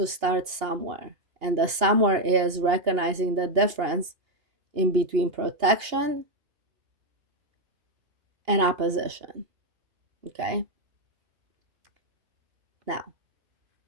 start somewhere. And the somewhere is recognizing the difference in between protection and opposition. Okay. Now,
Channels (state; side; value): late; left; 2.8 ms